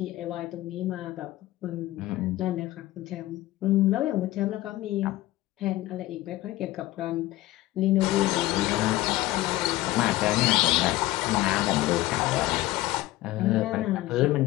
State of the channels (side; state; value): right; quieter; 17.0 dB